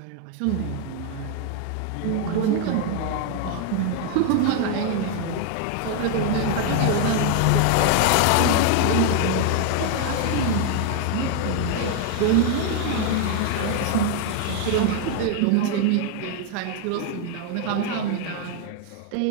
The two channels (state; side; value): different; both; correlation 0.00